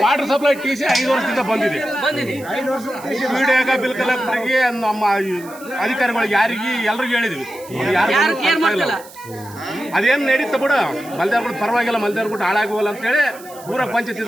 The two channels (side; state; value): right; noise; hiss, 20 dB below the sound